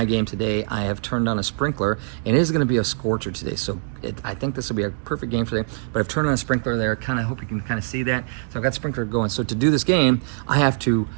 game today, I have turned on a sprinkler, and it is going to be a scorcher today. So I think this will be a perfect game today, but I've turned on a sprinkler there. Kind of hope you can kind of see that. So I've got the sprinkler going. So to do this game, I have to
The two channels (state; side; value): silent; left; digital silence